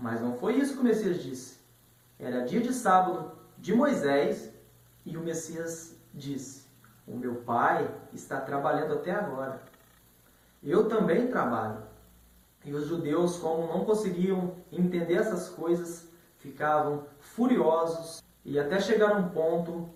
não foi isso que o Messias disse. Era dia de sábado de Moisés e o Messias disse: o meu Pai está trabalhando até agora. Eu também trabalho. E os judeus, como não conseguiam entender essas coisas, ficavam furiosos e até chegaram a um ponto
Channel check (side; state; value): both; identical; correlation 1.00